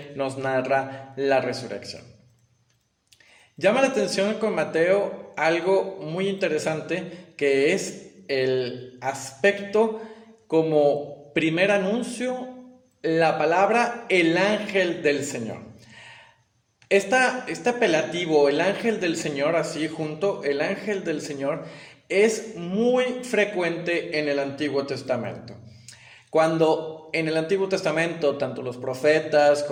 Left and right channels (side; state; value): both; identical; correlation 1.00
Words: nos narra la resurrección. Llama la atención con Mateo algo muy interesante, que es el aspecto como primer anuncio, la palabra el ángel del Señor. Este apelativo, el ángel del Señor, así junto, el ángel del Señor, es muy frecuente en el Antiguo Testamento. Cuando en el Antiguo Testamento tanto los profetas